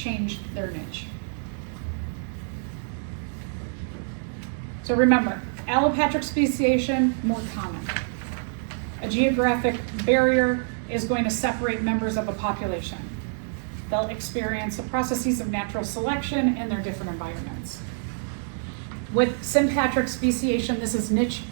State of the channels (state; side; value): silent; left; 61 dB below the other